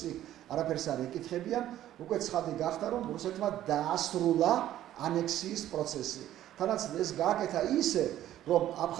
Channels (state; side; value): quieter; left; 12.7 dB